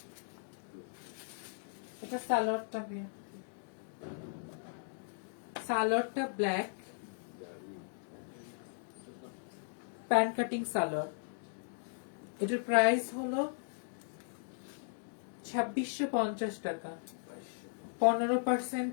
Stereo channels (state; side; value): silent; right; digital silence